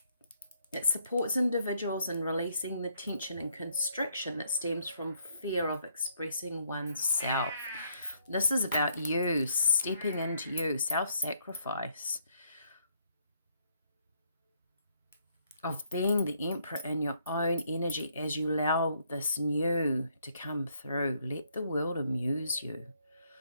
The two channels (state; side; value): inverted; both; correlation -0.71